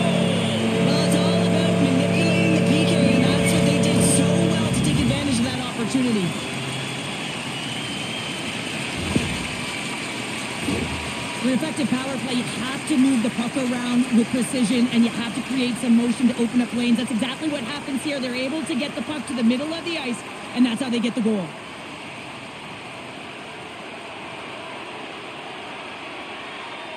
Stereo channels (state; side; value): identical; both; correlation 1.00